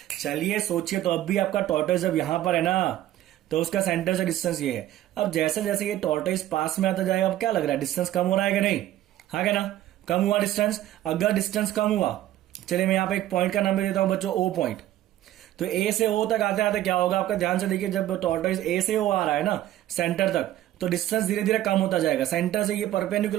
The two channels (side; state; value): left; quieter; 13.7 dB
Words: चलिए सोचिए, तो अब भी आपका टॉर्टोइस जब यहां पर है ना, तो उसका सेंटर से डिस्टेंस ये है। अब जैसे जैसे ये टॉर्टोइस पास में आता जाएगा, अब क्या लग रहा है, डिस्टेंस कम हो रहा है कि नहीं? हाँ क्या ना, कम हुआ डिस्टेंस। अगर डिस्टेंस कम हुआ, चलिए मैं यहाँ पे एक पॉइंट का नाम दे देता हूं बच्चों, ओ पॉइंट। तो ए से ओ तक आते आते क्या होगा आपका, ध्यान से देखिए, जब टॉर्टोइस ए से ओ आ रहा है ना सेंटर तक, तो डिस्टेंस धीरे धीरे कम होता जाएगा। सेंटर से ये